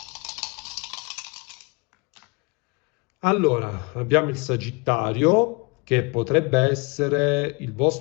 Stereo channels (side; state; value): right; quieter; 29.4 dB